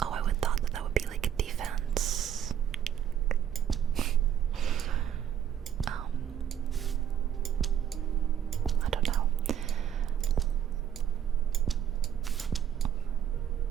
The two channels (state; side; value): quieter; left; 9.5 dB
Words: Oh, I would thought that would be like a defense. I don't know.